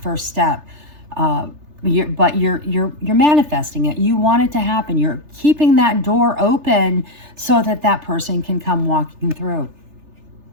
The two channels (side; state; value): left; late; 3.3 ms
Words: first step. But you're manifesting it. You want it to happen. You're keeping that door open so that person can come walking through.